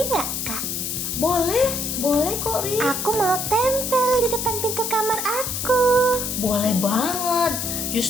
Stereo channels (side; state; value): left; noise; hiss, 3 dB below the sound